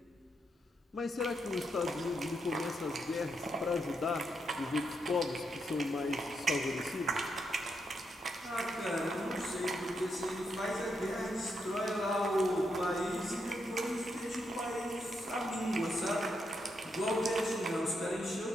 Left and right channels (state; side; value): normal; both; correlation 0.81